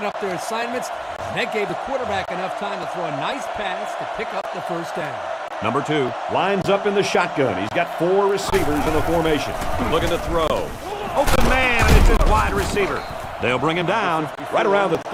up their assignments, and that gave the quarterback enough time to throw a nice pass to pick up the first down. Number 2 lines up in the shotgun. He's got 4 receivers in the formation. Looking to throw. Open man, and it's his wide receiver. They'll bring him down right around the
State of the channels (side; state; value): both; identical; correlation 1.00